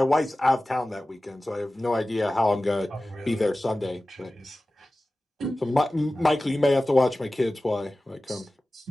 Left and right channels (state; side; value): normal; both; correlation 0.96